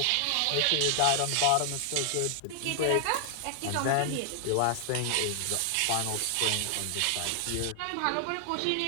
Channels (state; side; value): different; both; correlation 0.00